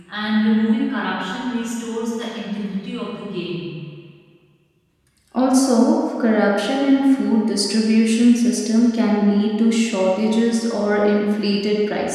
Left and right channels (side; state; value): both; identical; correlation 1.00